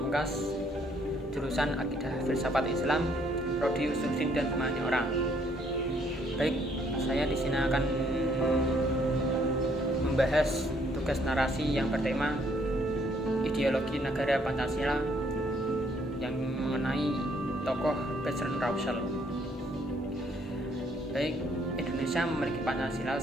jurusan Akidah Filsafat Islam, Prodi Usul dan Pemahaman Orang. Baik, saya di sini akan membahas tugas narasi yang bertema ideologi negara Pancasila yang mengenai tokoh Bertrand Russell. Baik, Indonesia memiliki Pancasila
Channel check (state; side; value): normal; both; correlation 0.67